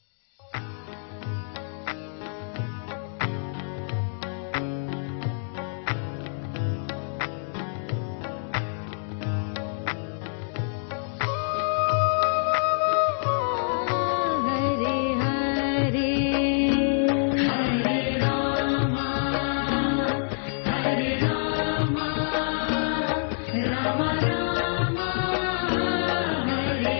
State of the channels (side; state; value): right; silent; digital silence